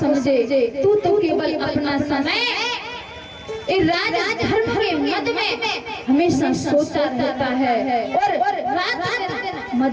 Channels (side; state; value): both; identical; correlation 1.00